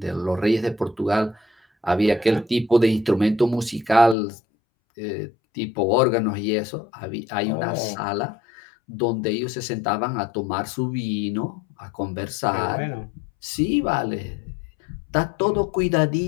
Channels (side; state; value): right; drops out; at 4.2 s